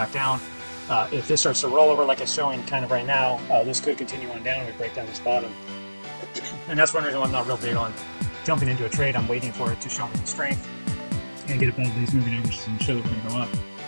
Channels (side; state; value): both; inverted; correlation -1.00